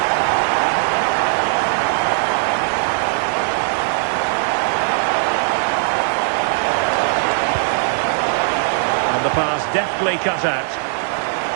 And the pass deftly cut out.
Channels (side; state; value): left; silent; digital silence